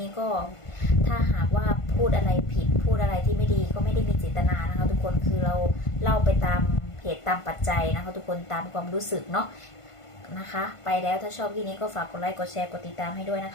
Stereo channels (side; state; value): right; late; 1.5 ms